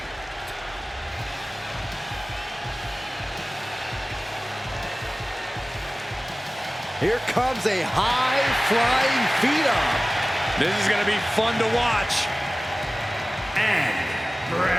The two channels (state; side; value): normal; both; correlation 0.97